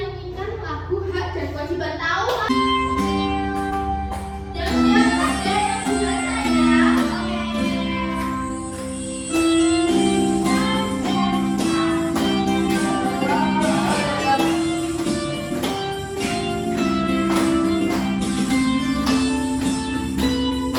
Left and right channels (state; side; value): identical; both; correlation 1.00